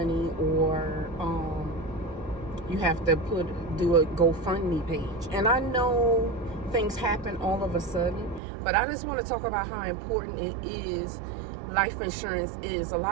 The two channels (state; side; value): drops out; left; at 8.4 s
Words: or you have to do a GoFundMe page. And I know things happen all of a sudden, but I just want to talk about how important it is. Life insurance is. A